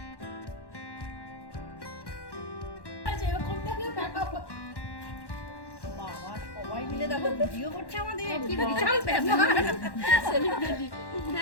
সবাই মিলে দেখো ভিডিও করছে আমাদের, কি বিশাল ব্যাপার। সেলিব্রিটি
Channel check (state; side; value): late; right; 1.1 ms